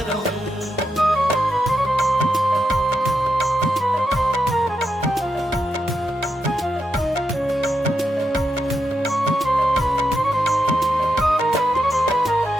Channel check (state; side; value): normal; both; correlation 0.84